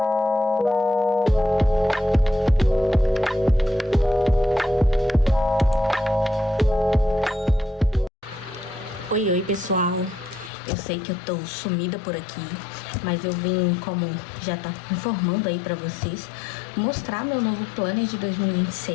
pessoal. Eu sei que eu tô sumida por aqui, mas eu vim, como já tá informando aí pra vocês, mostrar meu novo planner de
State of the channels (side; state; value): right; drops out; at 10.5 s